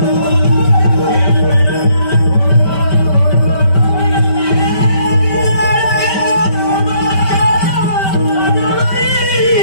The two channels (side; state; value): right; late; 5.2 ms